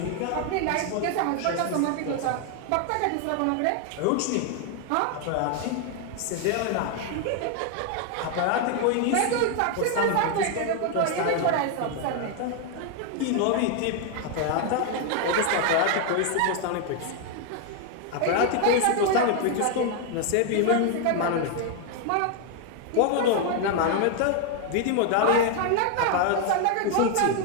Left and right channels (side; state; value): both; different; correlation 0.00